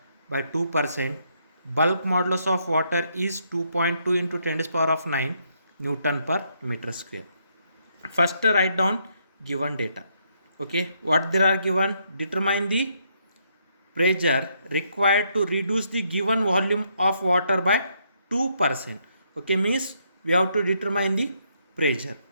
by 2%. Bulk modulus of water is 2.2 into 10 to the power of 9 Newton per meter square. First write down given data. Okay, what there are given? Determine the pressure required to reduce the given volume of water by 2%. Okay, means we have to determine the pressure.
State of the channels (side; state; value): both; inverted; correlation -0.74